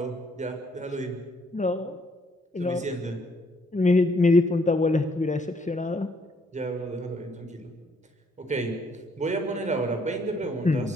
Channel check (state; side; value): normal; both; correlation 0.68